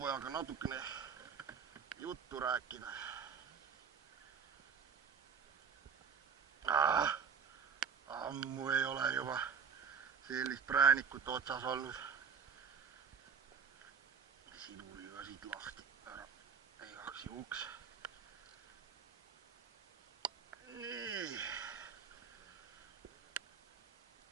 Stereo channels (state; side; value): quieter; left; 6.4 dB